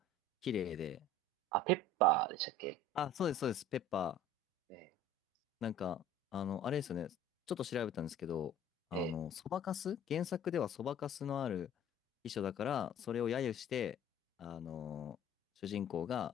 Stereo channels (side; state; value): both; normal; correlation 0.46